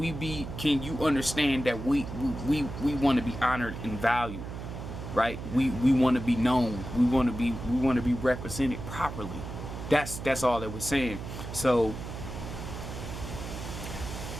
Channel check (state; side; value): noise; right; hum, 8 dB below the sound